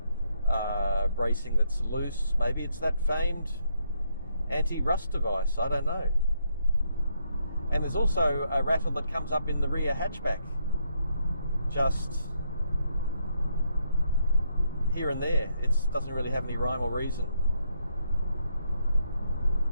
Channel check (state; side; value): inverted; both; correlation -0.75